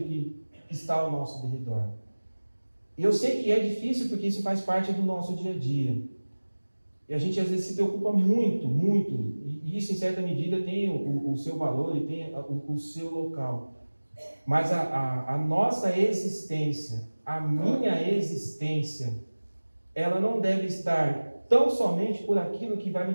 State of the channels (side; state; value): both; inverted; correlation -1.00